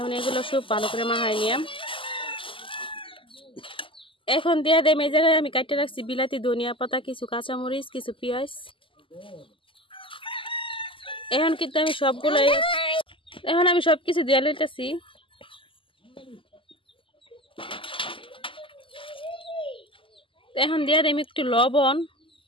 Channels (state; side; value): late; right; 0.25 ms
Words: এগুলো সব ভালো করে মাখাই নিলাম। এখন দিয়ে দেম এই জায়গায় আমি কাটতে রাখছি বিলাতি, ধনিয়া পাতা, কিছু কাঁচামরিচ, কিছু পেঁয়াজ। এখন কিন্তু আমি সবগুলো সবকিছু দিয়ে লইতেছি। এখন দিয়ে দেম একটু লবণ।